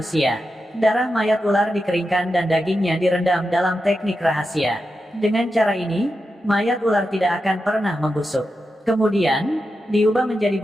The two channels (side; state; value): both; normal; correlation 0.89